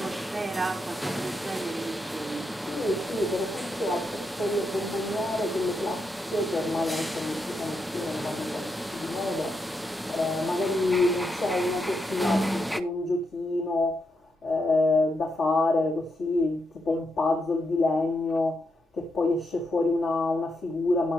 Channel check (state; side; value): normal; both; correlation 0.83